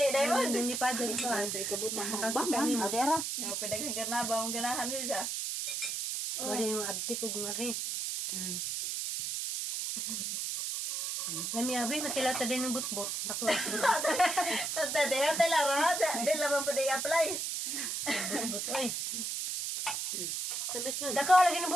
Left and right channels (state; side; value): noise; right; hiss, 2 dB below the sound